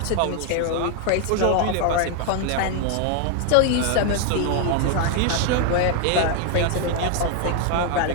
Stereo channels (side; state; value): both; different; correlation 0.00